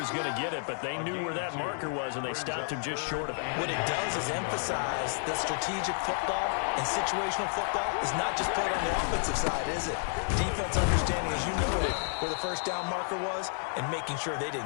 going to get it, but they knew where that marker was, and they stopped him just short of it. What it does is emphasize that strategic football and situational football is not just played on the offensive side, is it? Defense understanding, as you noted, where the 1st down marker was and making sure they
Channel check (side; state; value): right; silent; 57 dB below the other